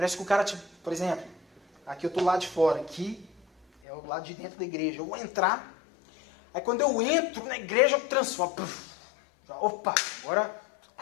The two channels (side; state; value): right; drops out; at 3.7 s